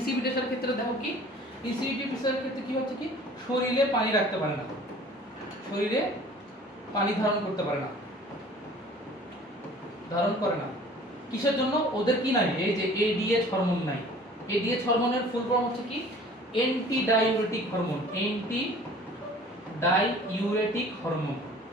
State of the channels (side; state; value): both; normal; correlation 0.48